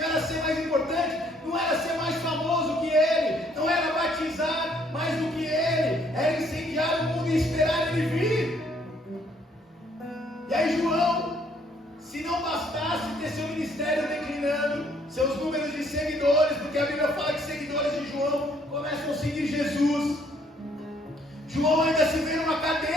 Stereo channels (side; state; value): both; normal; correlation 0.65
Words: era ser mais importante, não era ser mais famoso que ele, não era batizar mais do que ele, era incendiar o mundo e esperar ele vir. E aí João, se não bastasse ter seu ministério declinando, seus números de seguidores, porque a Bíblia fala que seguidores de João começam a seguir Jesus, João ainda se vê numa